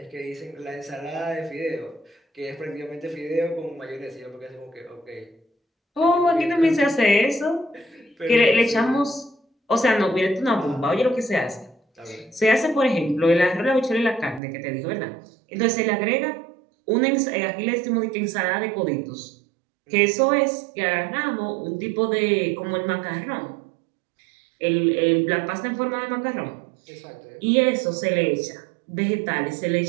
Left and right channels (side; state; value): left; drops out; at 14.4 s